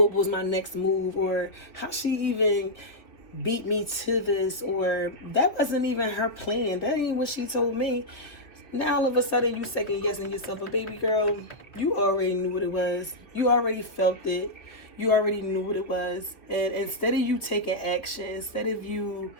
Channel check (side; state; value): right; late; 3.1 ms